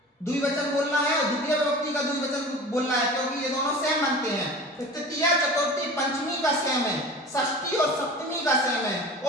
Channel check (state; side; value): normal; both; correlation 0.37